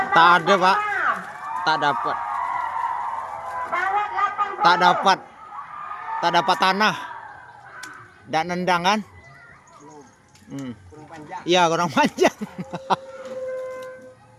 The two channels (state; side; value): identical; both; correlation 1.00